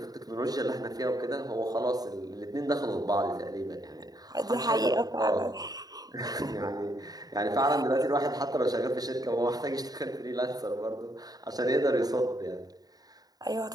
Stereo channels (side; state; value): left; late; 0.18 ms